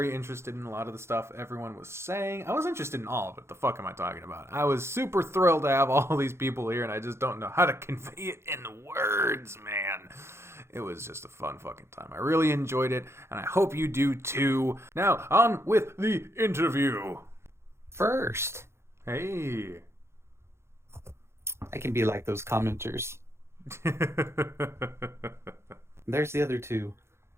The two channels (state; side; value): late; left; 0.13 ms